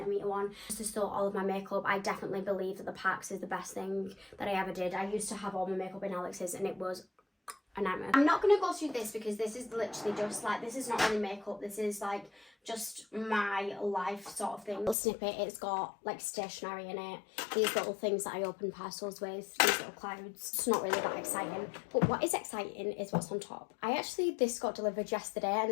one. Just to store all of my makeup, I definitely believe that the Pax is the best thing that I ever did. I used to have all my makeup in Alex's and it was a nightmare. I'm not going to go through this because this is literally just like, this is not really makeup, this is like just my life sort of thing. Little snippet, it's got like stationery in it, these little things that I open parcels with, these little clouds. It's not really that exciting, but what is exciting is what's on top. This got delivered yesterday, and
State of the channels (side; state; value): right; drops out; at 15.0 s